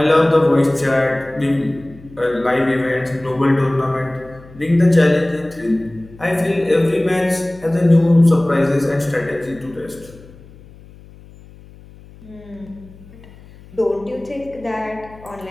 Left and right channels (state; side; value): noise; left; hum, 22 dB below the sound